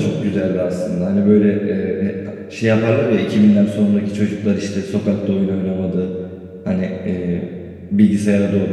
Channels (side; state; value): both; identical; correlation 1.00